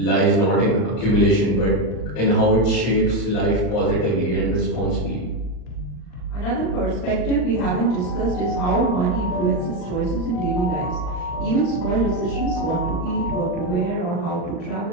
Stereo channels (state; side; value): late; right; 39 ms